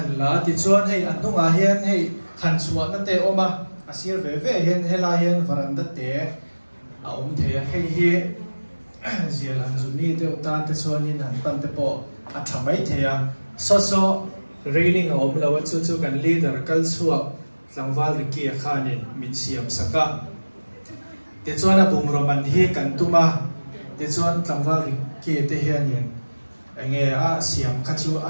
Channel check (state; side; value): inverted; both; correlation -1.00